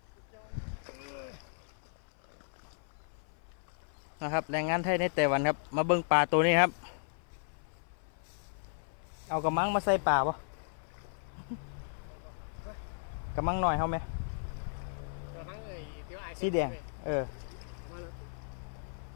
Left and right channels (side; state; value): right; silent; 54 dB below the other